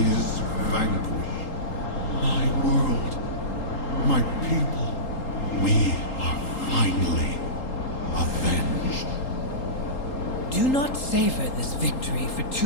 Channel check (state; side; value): late; right; 3.8 ms